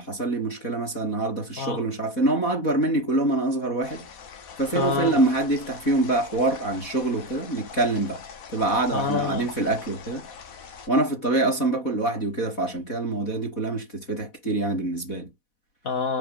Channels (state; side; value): late; right; 4.1 ms